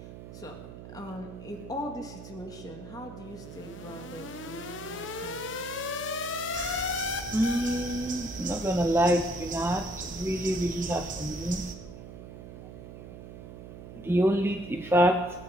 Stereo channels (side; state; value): right; noise; hum, 13 dB below the sound